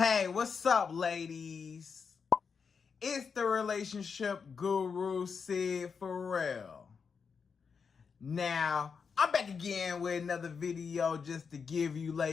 Hey, what's up, ladies? It's the relationship guru, Sydd Ferrell. Now, I'm back again with another video just to give you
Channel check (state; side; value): quieter; right; 5.9 dB